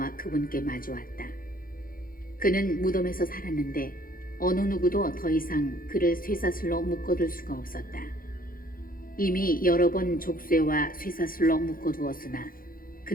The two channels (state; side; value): late; right; 0.41 ms